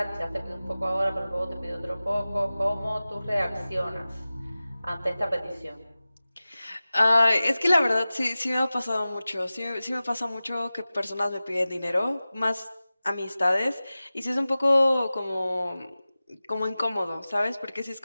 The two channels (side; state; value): both; inverted; correlation -0.96